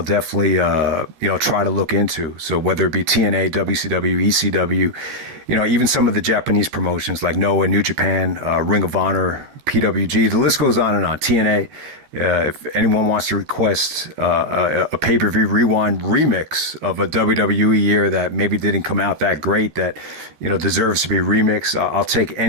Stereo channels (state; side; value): late; left; 13 ms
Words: definitely, try to look into. So whether it be TNA, WCW, ECW, even some of the Japanese promotions like Noah, New Japan, Ring of Honor, PWG, the list goes on and on. TNA, if anyone wants to request a pay-per-view rewind remix of a WWE year that maybe didn't come out that great, that, deserves to be remixed, I'll take